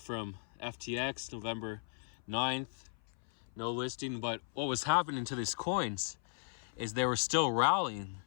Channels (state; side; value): silent; right; 53 dB below the other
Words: FTX, November 9th, no listing. But what was happening to these coins is they were still rallying.